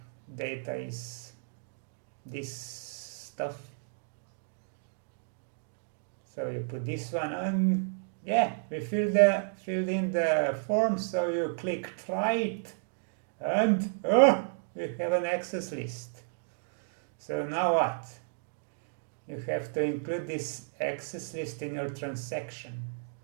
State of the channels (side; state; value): left; silent; digital silence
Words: is this stuff. So you put this one, and yeah, we filled in the form. So you click try it, and we have an access list. So now what? You have to include this access list in your transaction,